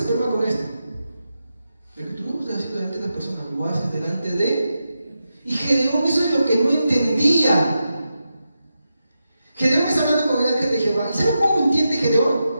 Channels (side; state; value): both; inverted; correlation -0.88